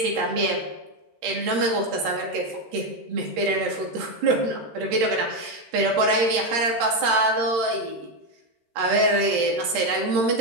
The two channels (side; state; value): left; late; 13 ms